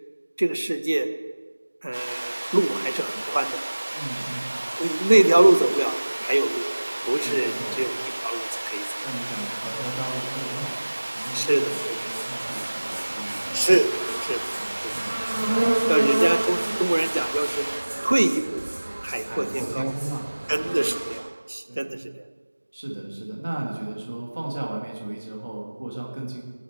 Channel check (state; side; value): inverted; both; correlation -1.00